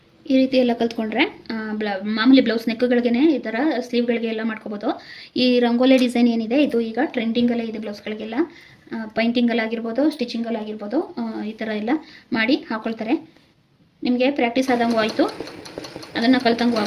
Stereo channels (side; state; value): both; identical; correlation 1.00